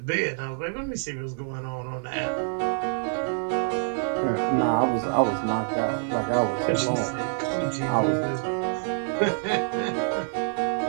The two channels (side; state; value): left; silent; digital silence